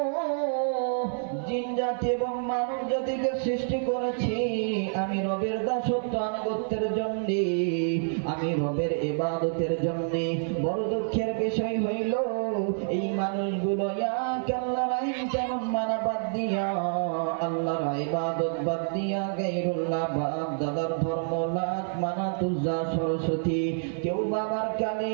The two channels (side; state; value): left; silent; digital silence